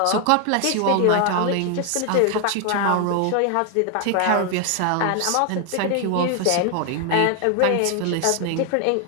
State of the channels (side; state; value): both; different; correlation 0.01